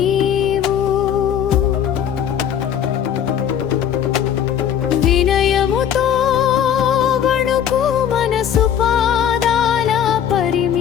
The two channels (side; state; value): right; quieter; 9.2 dB